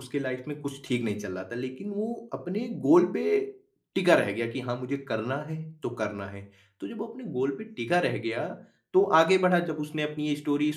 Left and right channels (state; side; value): identical; both; correlation 1.00